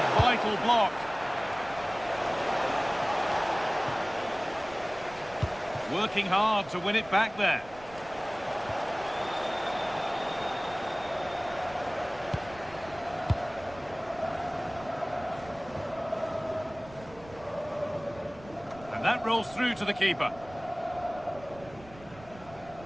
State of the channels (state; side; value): noise; right; rumble, 20 dB below the sound